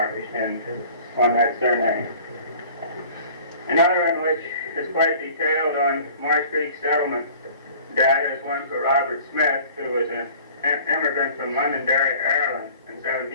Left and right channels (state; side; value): inverted; both; correlation -0.47